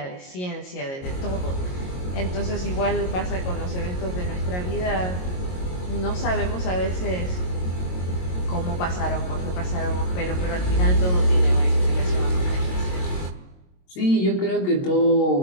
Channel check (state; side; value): late; right; 22 ms